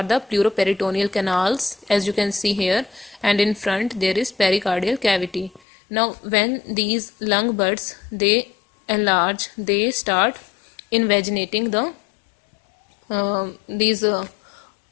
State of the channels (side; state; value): right; drops out; at 5.6 s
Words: the pleuroperitoneal canals, as you can see here, and in front there is pericardial cavity. Now when these lung buds, they enlarge, they start invaginating the these